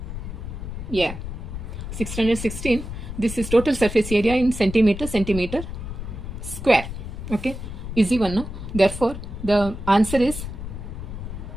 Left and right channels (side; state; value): left; noise; rumble, 8 dB below the sound